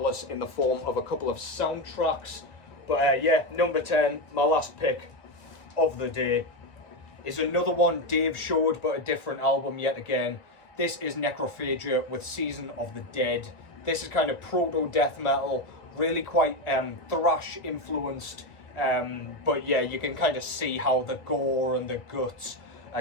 in the form of a couple of soundtracks. But yeah, number 10, my last pick of the day, is another one Dave showed, but a different album yet again. This is Necrophagia with Season of the Dead. This is kind of proto-death metal, really quite thrash influenced. But yeah, you can kind of see how the gore and the guts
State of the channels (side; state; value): right; late; 1.9 ms